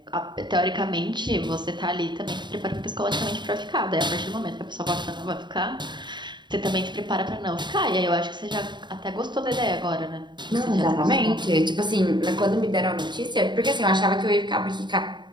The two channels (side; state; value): left; late; 0.22 ms